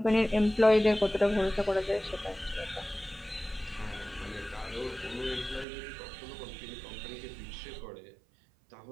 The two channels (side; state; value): left; drops out; at 5.7 s